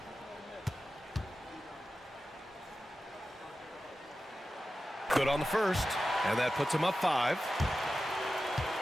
Good on the first, and that puts him up 5.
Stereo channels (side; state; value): both; normal; correlation 0.93